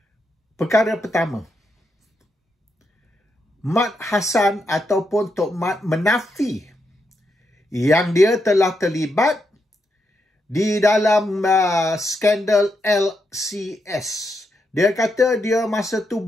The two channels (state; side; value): normal; both; correlation 0.82